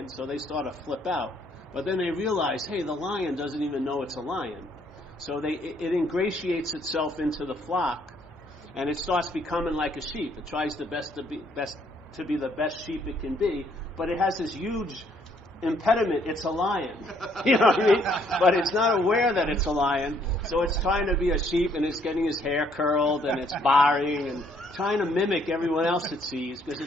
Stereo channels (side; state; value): both; normal; correlation 0.67